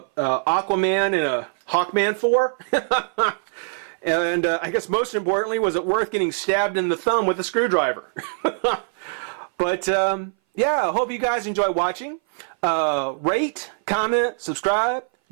and a Hawkman for? And I guess most importantly, was it worth getting stabbed in the thumb with a screwdriver? But yeah, I hope you guys enjoy watching. Rate, comment, subscribe,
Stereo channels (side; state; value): left; silent; 59 dB below the other